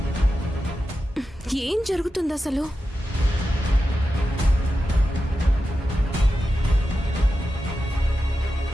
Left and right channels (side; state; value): both; normal; correlation 0.91